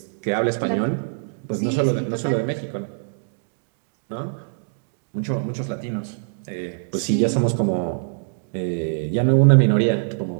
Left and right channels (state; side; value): silent; left; 64 dB below the other